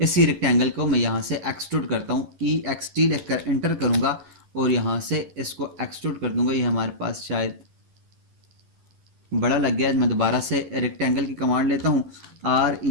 रेक्टेंगल को मैं यहाँ से एक्सट्रूड करता हूँ। EXT लिखकर एंटर करूँगा और यहाँ से इसको एक्सट्रूड कर दूंगा। ये हमारे पास शायद बड़ा लग गया है। मैं दोबारा से रेक्टेंगल की कमांड लेता हूँ,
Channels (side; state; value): left; late; 11 ms